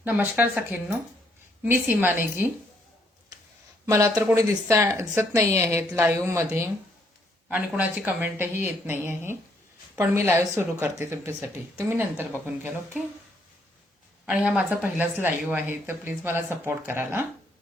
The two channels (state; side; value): normal; both; correlation 0.70